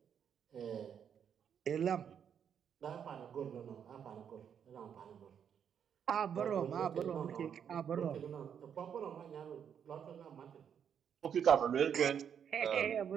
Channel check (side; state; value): left; quieter; 8.1 dB